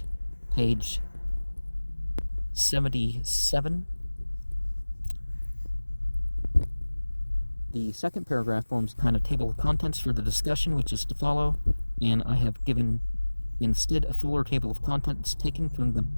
page 77. The second paragraph forms a kind of table of contents for the discussion which is to follow. and I have given instead a fuller table of contents taken from the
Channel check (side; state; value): both; inverted; correlation -1.00